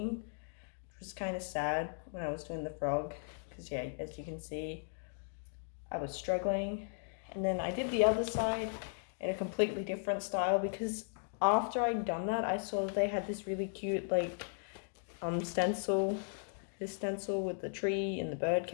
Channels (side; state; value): right; silent; digital silence